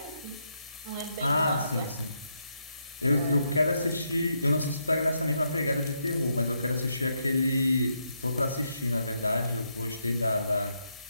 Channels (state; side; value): inverted; both; correlation -0.79